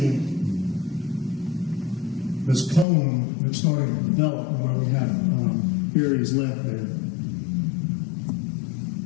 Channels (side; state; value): right; drops out; at 2.9 s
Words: this cone that's starting to develop where we have areas left there.